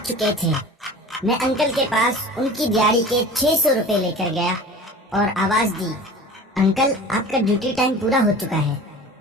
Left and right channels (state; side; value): normal; both; correlation 0.39